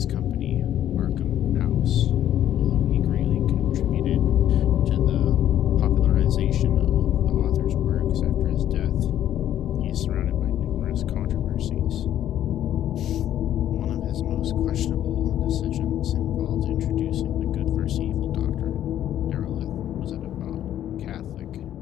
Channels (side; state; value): right; quieter; 11.4 dB